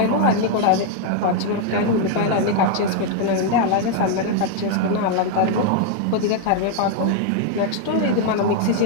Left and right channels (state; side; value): different; both; correlation 0.00